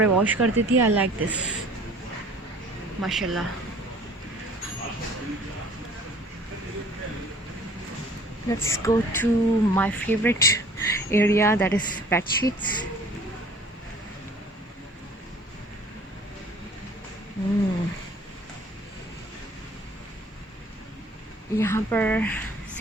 वॉश कर देती है. आई लाइक दिस माशाल्लाह. Let's go to my favourite area that is bed sheets. यहाँ पर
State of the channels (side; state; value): both; normal; correlation 0.51